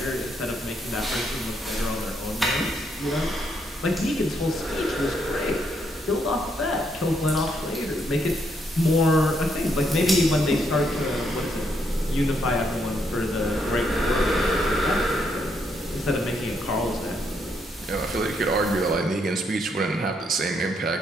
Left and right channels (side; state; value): both; normal; correlation 0.75